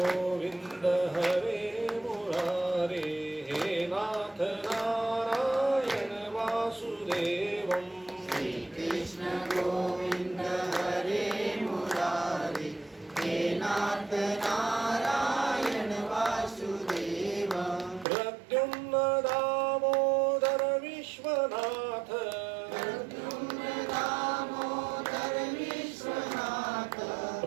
हरे मुरारे हे नाथ नारायण वासुदेवम। श्री कृष्ण गोविंद हरे मुरारे हे नाथ नारायण वासुदेवम। प्रद्युम्न दामोदर विश्वनाथ प्रद्युम्न दामोदर विश्वनाथ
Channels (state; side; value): drops out; left; at 18.1 s